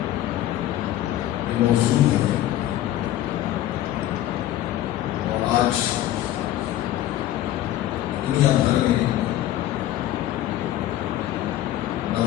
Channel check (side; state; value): right; quieter; 13.6 dB